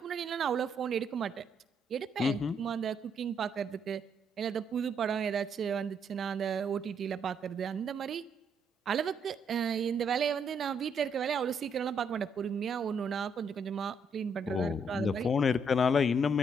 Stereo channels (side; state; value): both; normal; correlation 0.73